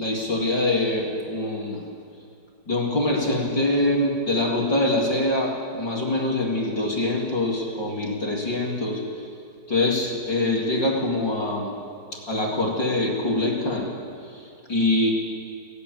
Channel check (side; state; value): right; late; 5.6 ms